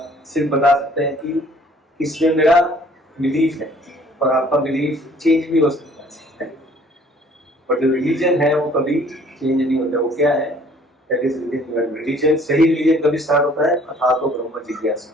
सिर्फ बता सकते हैं कि इसमें मेरा बिलीफ है, और आपका बिलीफ चेंज भी हो सकता है, पर जो रिलीजन है वो कभी चेंज नहीं होता। वो क्या है? That is religion. सही रिलीजन कभी स्टार्ट होता है? अथातो ब्रह्म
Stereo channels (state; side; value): normal; both; correlation 0.56